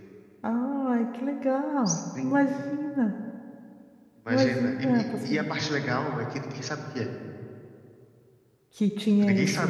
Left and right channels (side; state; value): both; identical; correlation 1.00